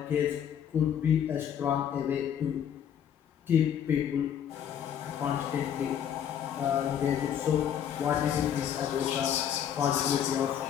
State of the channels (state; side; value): quieter; right; 9.2 dB